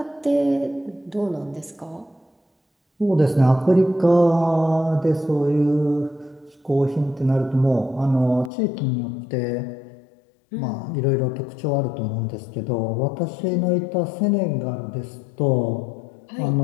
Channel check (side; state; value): right; drops out; at 8.5 s